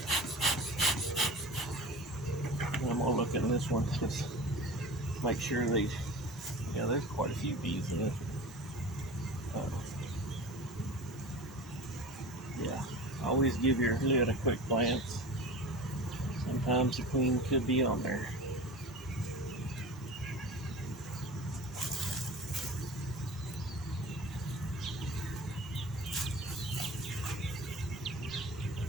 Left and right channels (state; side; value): normal; both; correlation 0.36